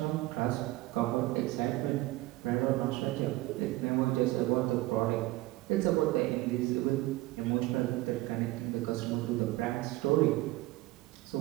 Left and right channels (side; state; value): left; quieter; 18.6 dB